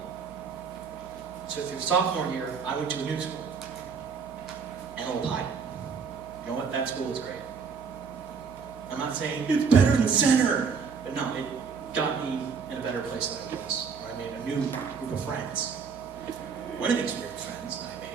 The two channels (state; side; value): quieter; left; 5.8 dB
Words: So through sophomore year, I went to a new school. Antelope High. You know what? That school is great. I'm not saying it's better than Center, but no, it got me in a better place than I was. Where I made a new group of friends. One of these weird friends that